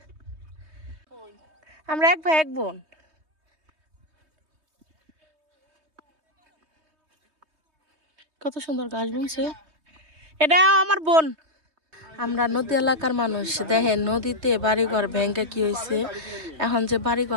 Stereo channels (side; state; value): left; late; 3.2 ms